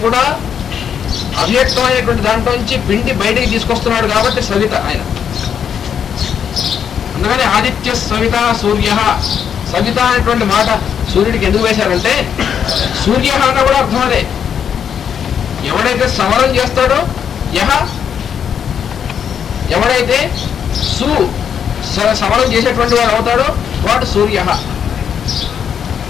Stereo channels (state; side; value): quieter; right; 8.0 dB